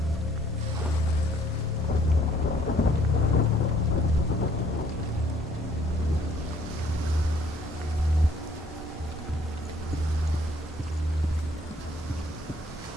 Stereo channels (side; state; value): both; normal; correlation 0.62